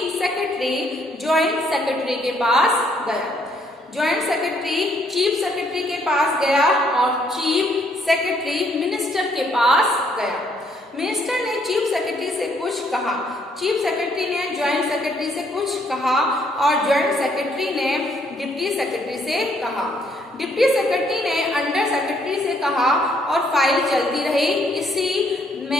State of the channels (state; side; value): normal; both; correlation 0.69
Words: सेक्रेटरी ज्वाइंट सेक्रेटरी के पास गया। ज्वाइंट सेक्रेटरी चीफ सेक्रेटरी के पास गया और चीफ सेक्रेटरी मिनिस्टर के पास गया। मिनिस्टर ने चीफ सेक्रेटरी से कुछ कहा, चीफ सेक्रेटरी ने ज्वाइंट सेक्रेटरी से कुछ कहा और ज्वाइंट सेक्रेटरी ने डिप्टी सेक्रेटरी से कहा। डिप्टी सेक्रेटरी ने अंडर सेक्रेटरी से कहा और फाइल चलती रही। इसी